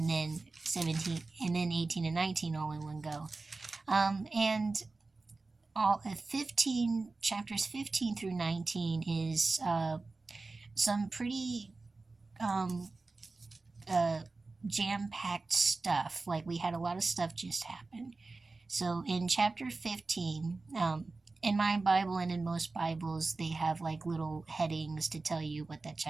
then 17, and then 18 and 19 all in one go. And all 15 chapters 15 through 19 is some pretty jam-packed stuff. Like, we had a lot of stuff just happen. So in chapter 15, in my Bible and in most Bibles, they have like little headings to tell you what that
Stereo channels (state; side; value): quieter; left; 3.6 dB